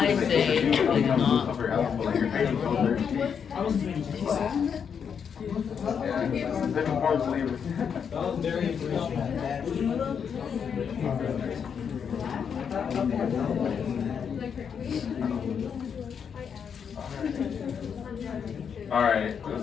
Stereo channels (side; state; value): right; quieter; 7.1 dB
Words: say they did not. stuff your house, but like you're paying soldiers. Yeah, different forms of slavery. All right,